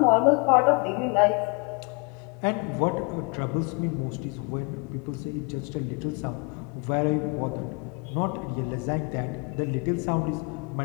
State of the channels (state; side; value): quieter; right; 31.8 dB